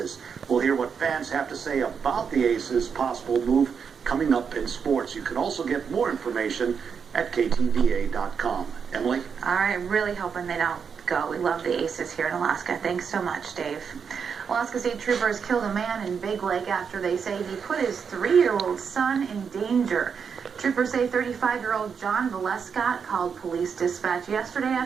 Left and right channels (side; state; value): left; quieter; 6.5 dB